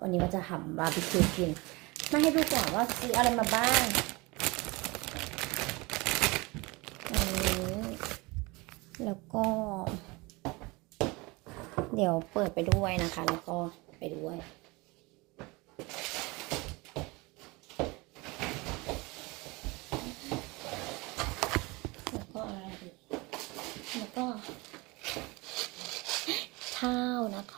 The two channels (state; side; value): quieter; left; 24.7 dB